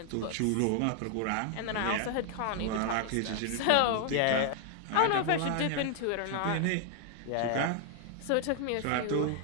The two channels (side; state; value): both; different; correlation 0.00